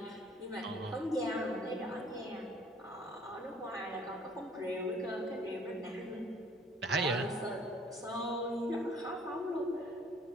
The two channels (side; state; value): both; normal; correlation 0.56